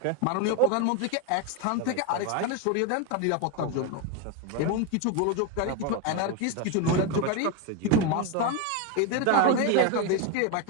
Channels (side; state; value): both; different; correlation 0.02